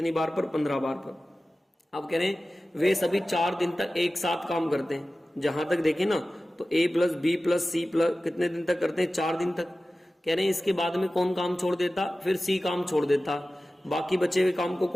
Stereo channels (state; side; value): normal; both; correlation 0.96